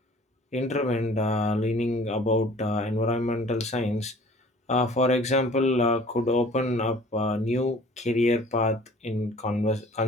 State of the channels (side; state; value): both; normal; correlation 0.50